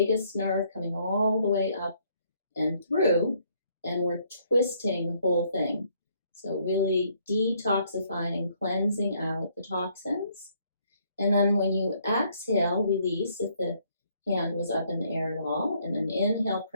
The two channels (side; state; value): both; inverted; correlation -0.67